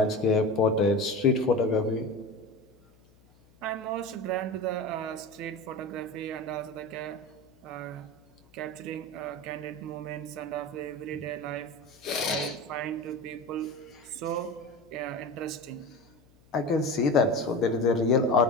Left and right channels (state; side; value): noise; left; hum, 29 dB below the sound